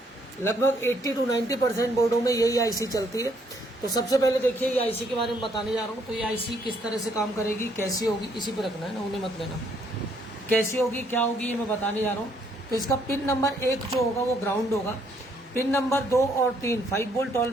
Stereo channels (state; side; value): normal; both; correlation 0.69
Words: लगभग 80 to 90% बोर्डों में यही आईसी चलती है। तो सबसे पहले देखिए ये आईसी के बारे में बताने जा रहा हूँ। तो ये आईसी किस तरह से काम करेगी, कैसी होगी, इसी पे रखना है ना, उन्हें मत लेना। कैसी होगी, क्या होगी, ये मैं बताने जा रहा हूँ। तो इसका पिन नंबर 1 जो होगा वो ग्राउंड होगा। पिन नंबर 2 और 3 5 वोल्ट